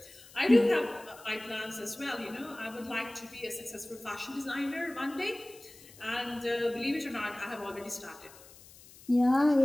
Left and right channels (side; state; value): left; noise; hiss, 21 dB below the sound